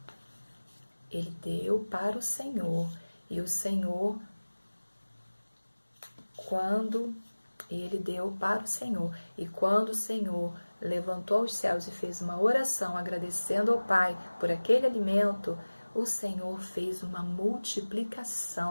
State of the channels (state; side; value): inverted; both; correlation -1.00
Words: ele deu para o Senhor. E o Senhor, quando ele deu para o Senhor, e quando o Senhor levantou os céus e fez uma oração agradecendo ao Pai por aquele alimento, o Senhor fez uma